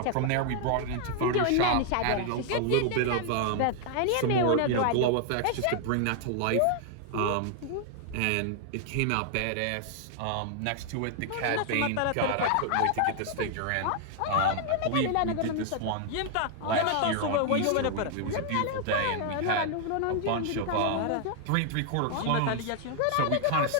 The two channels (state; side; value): different; both; correlation 0.00